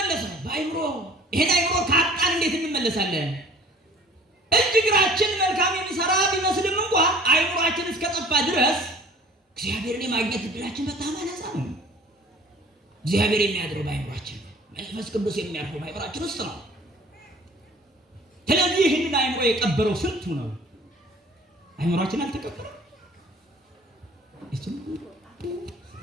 በአይምሮ። ይሄን አይምሮ ካጣን እንዴት እንመለሳለን? እጅ እግራችን መልካም የሚሰራ ቢመስልም እንኳ አይምሯችን እስከጠፋ ድረስ እግዚአብሔርን የማግኘት እድላችን በጣም አናሳ ነው። እግዚአብሔር የሚያድረው በአይምሯችን ነው። መንፈስ ቅዱስ የሚያርፈው በአይምሯችን ውስጥ ነው። ስለዚህ ይህንን አይምሮ የቀበረው ስንቱ ነው? አይምሯችን አልተቀበረም።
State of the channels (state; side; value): normal; both; correlation 0.49